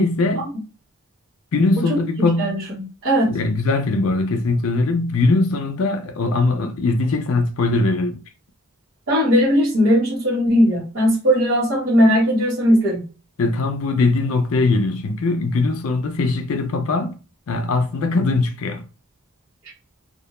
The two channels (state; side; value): normal; both; correlation 0.60